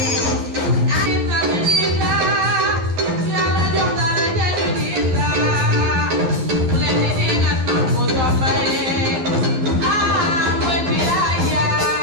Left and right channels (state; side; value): late; left; 12 ms